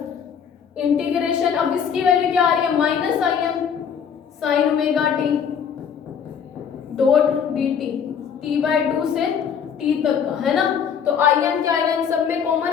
integration, अब इसकी वैल्यू क्या आ रही है, -im sign omega t dot dt, t/2 से t तक का है ना। तो im क्या आएगा, इन सब में कॉमन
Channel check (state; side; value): quieter; right; 7.4 dB